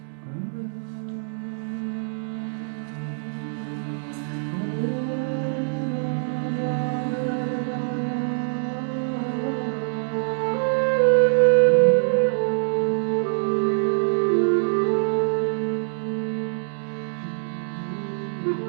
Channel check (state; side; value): silent; left; digital silence